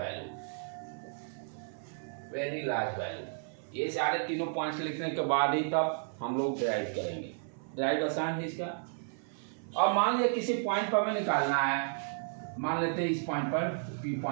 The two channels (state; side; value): silent; left; 56 dB below the other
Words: वैल्यू। ये सारे तीनों पॉइंट्स लिखने के बाद ही तब हम लोग ड्राइव करेंगे। ड्राइव आसान है इसका। अब मान लिया किसी पॉइंट पर हमें निकालना है, मान लेते हैं इस पॉइंट पर, P